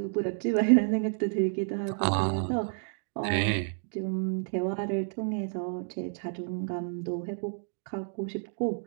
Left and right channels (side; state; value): left; silent; 58 dB below the other